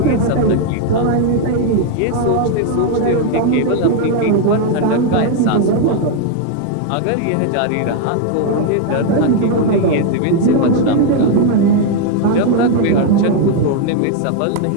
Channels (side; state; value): both; different; correlation 0.01